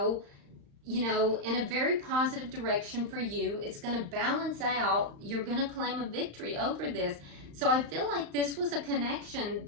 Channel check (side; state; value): left; late; 35 ms